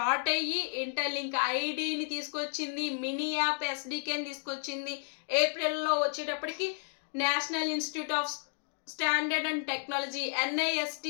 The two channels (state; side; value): silent; right; 56 dB below the other